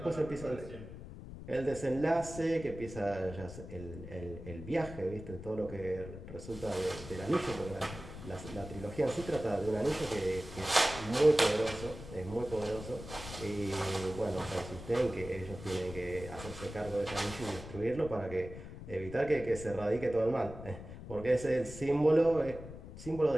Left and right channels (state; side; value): noise; left; rumble, 12 dB below the sound